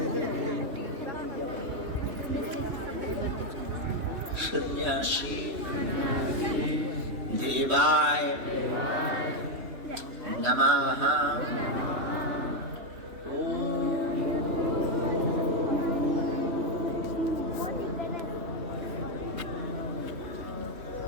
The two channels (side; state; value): left; late; 3.2 ms